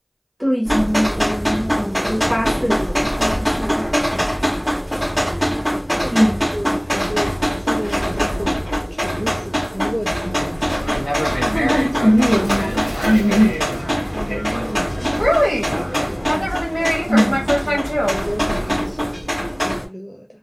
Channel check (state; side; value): identical; both; correlation 1.00